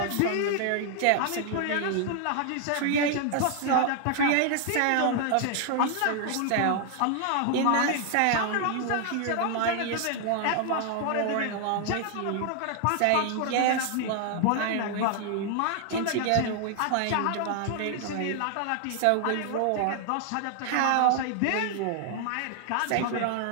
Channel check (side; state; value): both; different; correlation 0.00